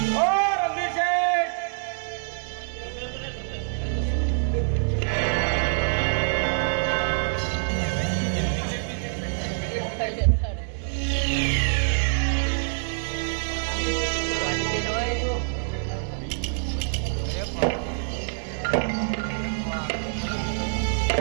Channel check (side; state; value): left; silent; digital silence